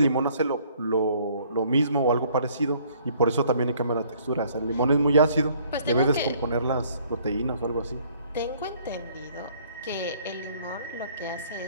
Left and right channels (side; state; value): both; inverted; correlation -0.60